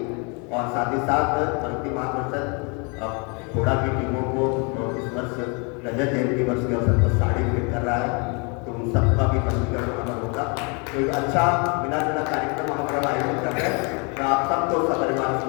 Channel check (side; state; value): right; quieter; 33.1 dB